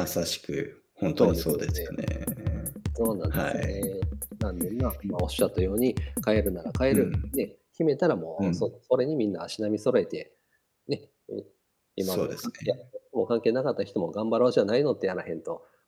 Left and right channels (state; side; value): identical; both; correlation 1.00